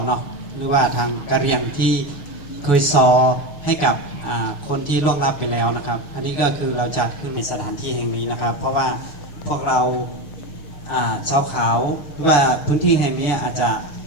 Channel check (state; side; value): late; right; 6.5 ms